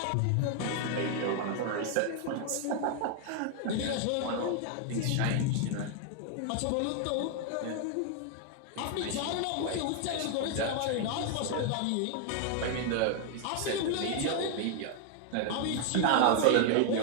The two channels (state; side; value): different; both; correlation 0.00